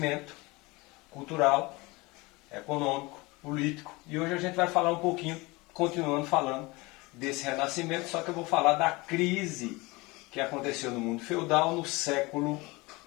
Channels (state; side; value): quieter; right; 23.8 dB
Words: cultural, econômico, político. E hoje a gente vai falar um pouquinho, continuando falando desse renascimento, só que eu vou falar da crise que aconteceu no mundo feudal no século